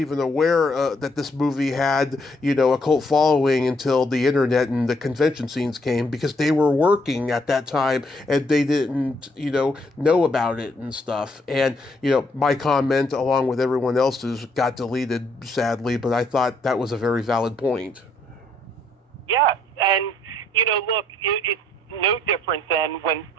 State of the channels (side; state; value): both; normal; correlation 0.70